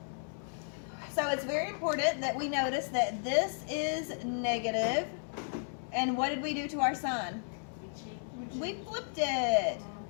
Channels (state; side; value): silent; right; digital silence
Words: So it's very important that we notice that this is negative. And what did we do to our sign? We flipped it.